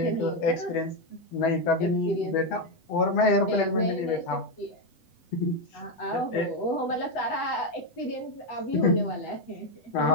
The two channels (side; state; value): right; late; 8.0 ms